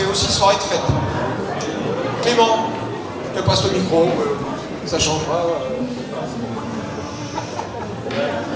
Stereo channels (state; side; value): identical; both; correlation 1.00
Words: aussi soirée de fête. Clément, je te passe le micro, ça changera.